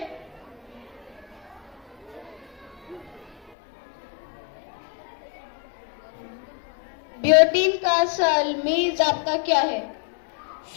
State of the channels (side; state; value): right; drops out; at 3.5 s